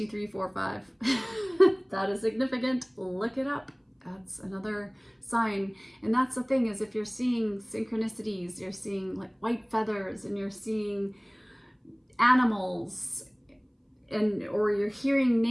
3, 4, 5. That is significant. Look it up. That's another sign. And that's the thing, is if you're seeing synchronicities, you're seeing like white feathers, and you're seeing animals, or you're hearing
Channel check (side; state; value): both; identical; correlation 1.00